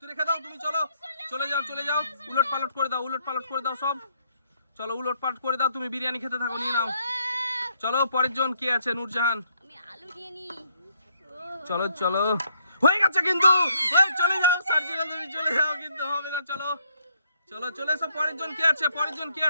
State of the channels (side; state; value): both; inverted; correlation -0.71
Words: রেখে দাও, তুমি চলো, চলে যাও, চলে যাও। উলট পালট করে দাও, উলট পালট করে দাও সব। চলো উলট পালট করে দাও, তুমি বিরিয়ানি খেতে থাকো, নিয়ে নাও। চলো পরের জন কে আছে, নূরজাহান। আমি আলু নিয়ে নি। চলো চলো, হয়ে গেছে কিন্তু। চলে যাও সার্জিনা, তুমি চলে যাও, কিন্তু হবে না। চলো চলো চলে এসো। পরের জন কি আছে, পরের জন কি